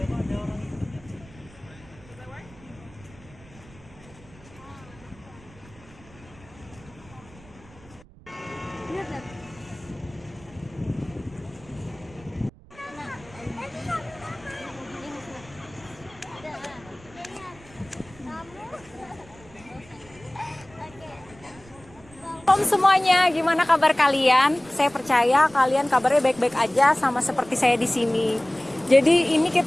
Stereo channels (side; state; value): right; noise; rumble, 23 dB below the sound